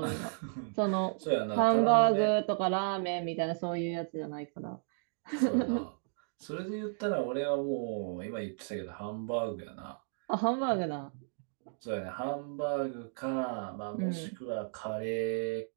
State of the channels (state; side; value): silent; left; digital silence